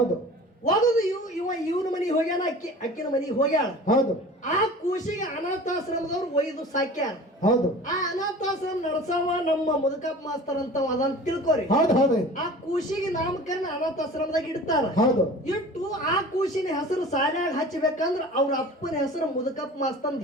ಒಗದು ಇವನ ಮನೆಗೆ ಹೋಗ್ಯಾನ ಅಕ್ಕಿನ ಮನೆಗೆ ಹೋಗ್ಯಾಳ ಹೌದು ಆ ಕೂಸಿಗೆ ಅನಾಥಾಶ್ರಮದವ್ರು ಒಯ್ದು ಸಾಕ್ಯಾರ ಹೌದು ಆ ಅನಾಥಾಶ್ರಮ ನಡ್ಸವ ನಮ್ಮ ಮುದುಕಪ್ಪ ಮಾಸ್ತರ್ ಅಂತ ಅದಂತ ತಿಳ್ಕೊರಿ ಹೌದು ಹೌದು ಆ ಕೂಸಿಗೆ ನಾಮಕರಣ ಅನಾಥಾಶ್ರಮದಾಗ ಇಡ್ತಾರ ಹೌದು ಇಟ್ಟು ಆ ಕೂಸಿನ ಹೆಸರು ಸಾಲ್ಯಾಗ ಹಚ್ಚಬೇಕಂದ್ರ ಅವ್ರ ಅಪ್ಪನ ಹೆಸರು ಮುದುಕಪ್ಪ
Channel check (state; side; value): normal; both; correlation 0.41